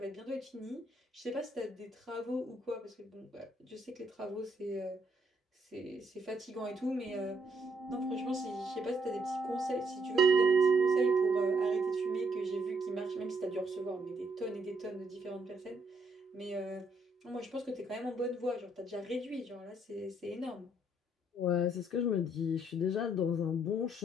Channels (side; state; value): both; normal; correlation 0.72